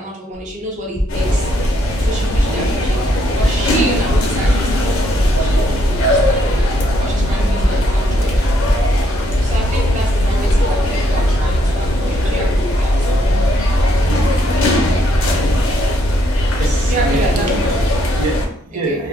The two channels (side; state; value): both; normal; correlation 0.72